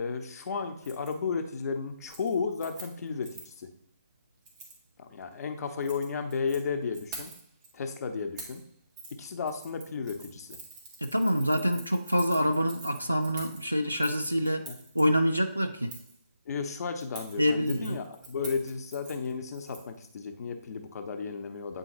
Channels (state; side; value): inverted; both; correlation -0.83